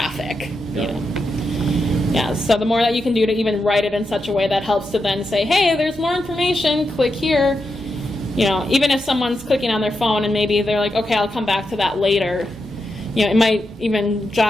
Yeah, so the more that you can do to even write it in such a way that helps to then say, hey, there's more information, click here. Even if someone's clicking on their phone and maybe they're like, okay, I'll come back to that later. It might even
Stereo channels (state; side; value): normal; both; correlation 0.86